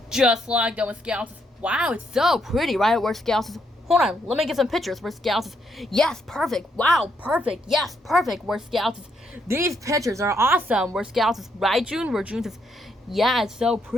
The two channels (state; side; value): normal; both; correlation 0.75